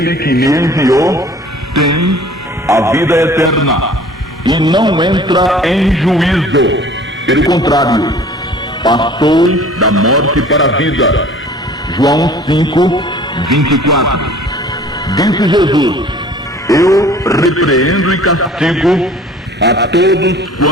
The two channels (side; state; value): both; normal; correlation 0.48